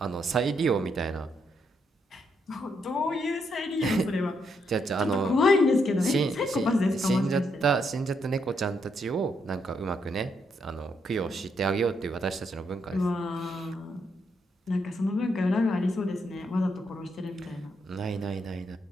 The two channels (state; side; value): normal; both; correlation 0.77